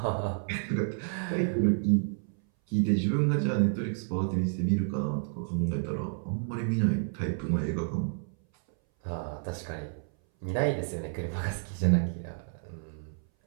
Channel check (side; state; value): left; silent; 58 dB below the other